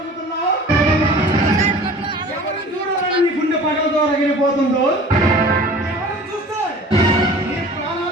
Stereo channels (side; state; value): both; normal; correlation 0.44